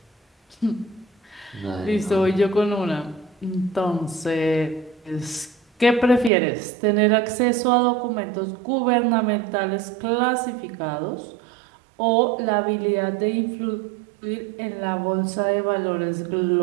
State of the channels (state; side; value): drops out; left; at 6.3 s